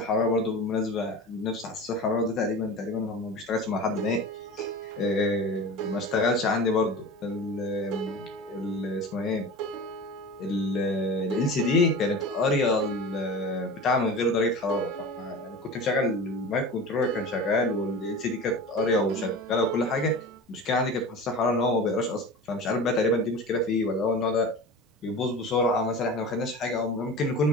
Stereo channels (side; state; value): both; normal; correlation 0.33